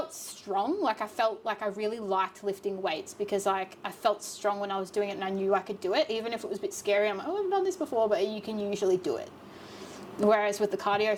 strong. Like, I felt like I really liked lifting weights, because like I felt strong when I was doing it, and I knew I could do it, even if it was a bit scary. I'm like, oh, I've done this before, but you can usually do it. Whereas with the cardio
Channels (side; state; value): both; identical; correlation 1.00